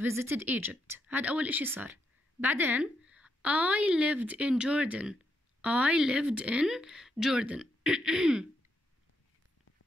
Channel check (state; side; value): normal; both; correlation 0.80